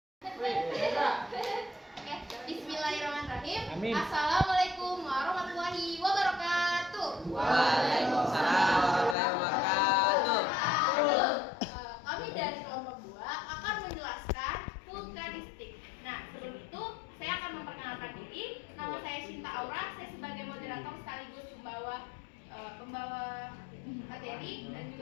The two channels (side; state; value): right; drops out; at 9.2 s